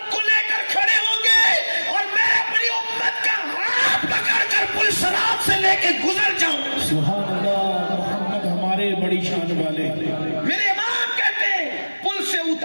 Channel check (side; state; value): both; inverted; correlation -1.00